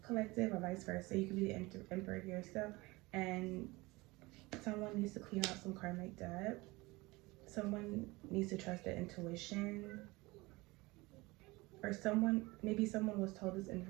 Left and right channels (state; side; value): quieter; left; 22.3 dB